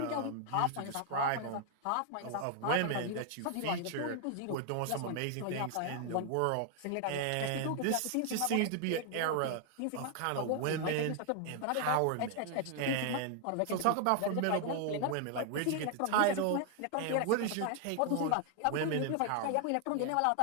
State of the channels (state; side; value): different; both; correlation 0.00